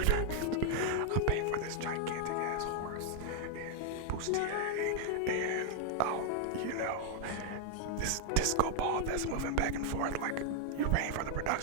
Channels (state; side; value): different; both; correlation 0.00